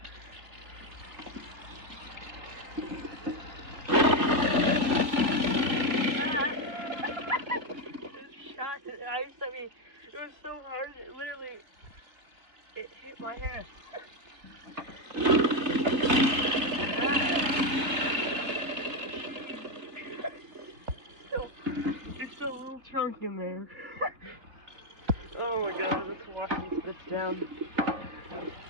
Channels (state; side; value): late; left; 3.1 ms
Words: It was so hard, it literally, it hit my hand. There's still a little chunk in there. Oh my god, let's wash these bits down.